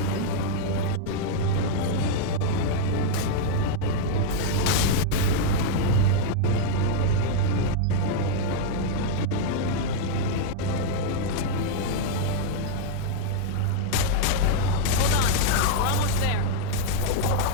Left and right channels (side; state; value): both; different; correlation -0.01